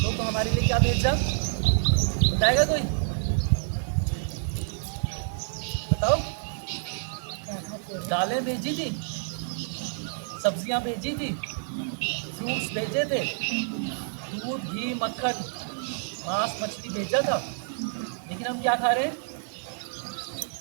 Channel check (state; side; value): silent; left; digital silence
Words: तो हमारे लिए क्या भेजा? बताएगा कोई? बताओ। दालें भेजी थी, सब्जियां भेजी थी, फ्रूट्स भेजे थे, दूध, घी, मक्खन, मांस, मछली भेजा था। लेकिन हम क्या खा रहे हैं?